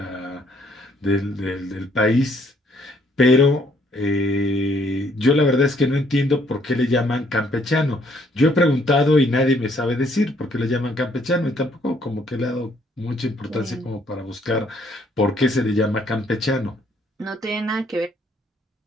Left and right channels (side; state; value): both; normal; correlation 0.66